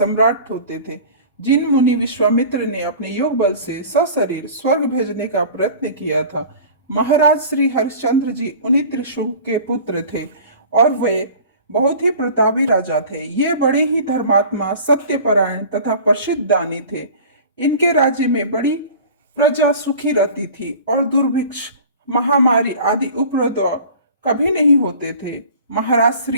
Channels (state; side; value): inverted; both; correlation -0.42